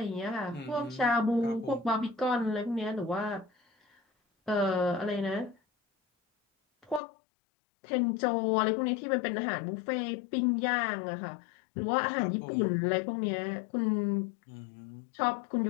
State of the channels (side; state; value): right; drops out; at 7.0 s